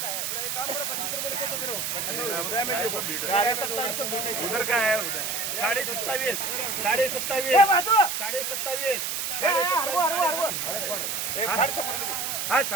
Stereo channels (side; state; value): right; noise; hiss, 2 dB below the sound